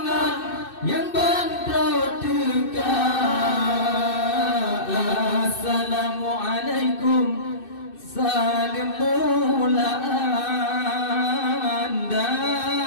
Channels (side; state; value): right; late; 2.6 ms